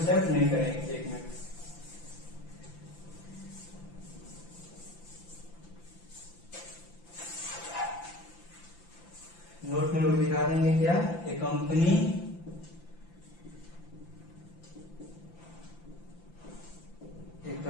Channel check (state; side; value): late; right; 5.9 ms